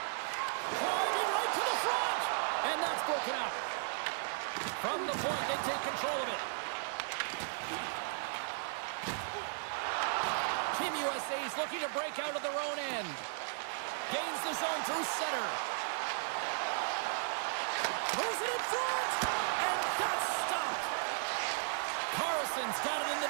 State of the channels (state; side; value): silent; left; digital silence